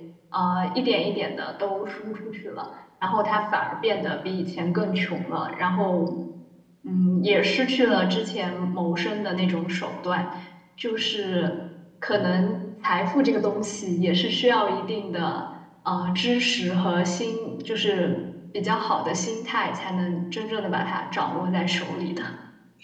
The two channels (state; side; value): identical; both; correlation 1.00